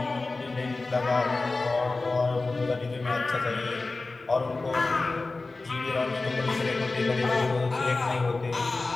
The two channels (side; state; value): right; quieter; 3.5 dB